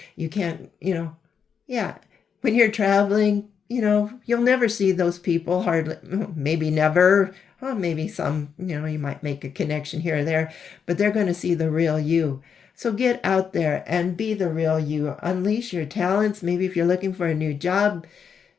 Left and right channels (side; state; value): right; quieter; 6.9 dB